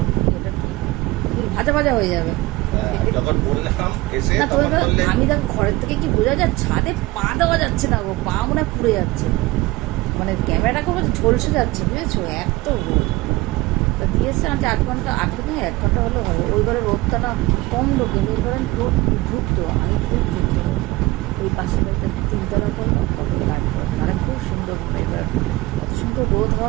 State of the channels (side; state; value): left; quieter; 20.3 dB